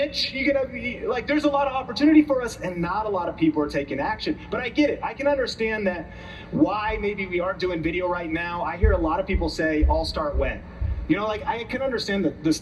You gotta be, like, there's a lot of opportunity for us, and not a lot of people are taking action. But I get it. I can understand that why maybe we aren't doing video right now. I hear a lot of people say, I'll start when. You know, like, I can understand that the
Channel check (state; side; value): identical; both; correlation 1.00